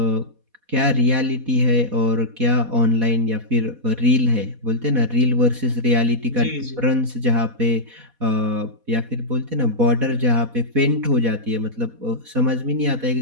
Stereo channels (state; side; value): late; left; 4.2 ms